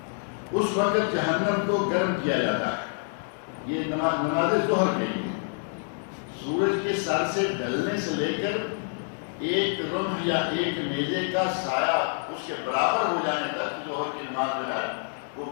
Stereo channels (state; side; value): silent; right; 60 dB below the other